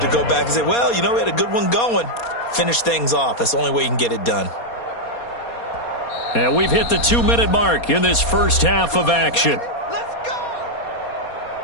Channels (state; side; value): late; right; 4.2 ms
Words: to go back and say, well, you know, we had a good one going. Finish things off. That's the only way you can get it done. And we've hit the 2-minute mark in this first half of action.